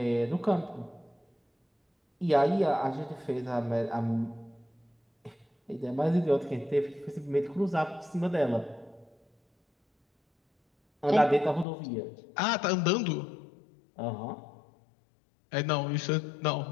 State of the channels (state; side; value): drops out; right; at 11.7 s